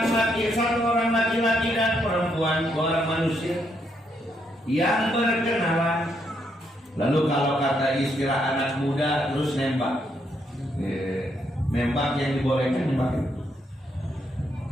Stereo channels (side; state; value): both; normal; correlation 0.76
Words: laki, satu orang laki-laki dan perempuan, dua orang manusia yang berkenalan. Lalu kalau kata istilah anak muda, terus nembak. Nembak yang dibolehkan nembak.